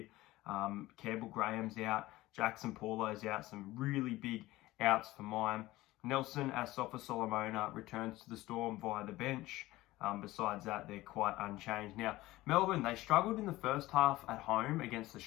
Campbell Graham's out, Jackson Paulo's out, some really big outs for mine. Nelson Asafa Solomona returns to the Storm via the bench. Besides that, they're quite unchanged. Now, Melbourne, they struggled in the first half at home against the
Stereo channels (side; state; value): right; quieter; 17.9 dB